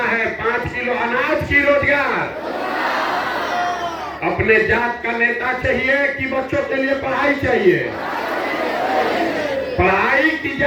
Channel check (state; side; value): identical; both; correlation 1.00